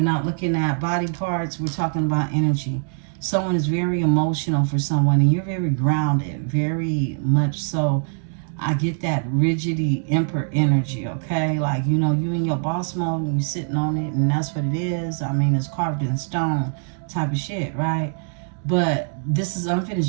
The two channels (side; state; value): left; silent; 61 dB below the other